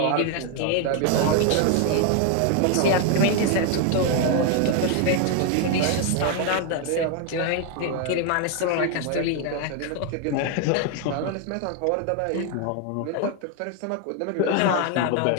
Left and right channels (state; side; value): different; both; correlation 0.01